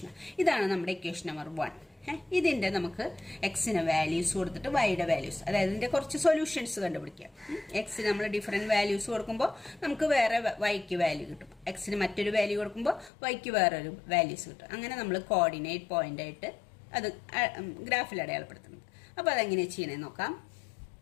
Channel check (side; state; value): right; drops out; at 13.1 s